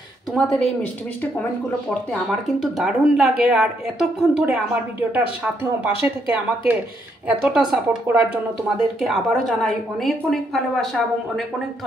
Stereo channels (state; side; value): normal; both; correlation 0.74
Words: তোমাদের এই মিষ্টি মিষ্টি কমেন্টগুলো পড়তে আমার কিন্তু দারুণ লাগে। আর এতক্ষণ ধরে আমার ভিডিওটার সাথেও পাশে থেকে আমাকে এতটা সাপোর্ট করার জন্য তোমাদেরকে আবারও জানাই অনেক অনেক ভালোবাসা এবং অনেক অনেক